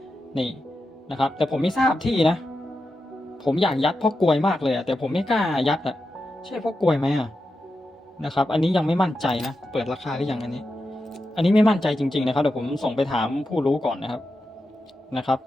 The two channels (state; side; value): normal; both; correlation 0.89